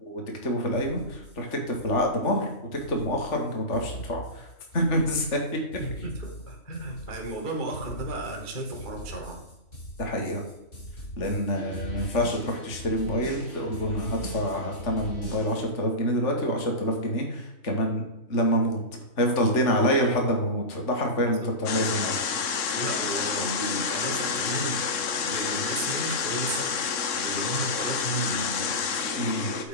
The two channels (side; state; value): right; late; 3.6 ms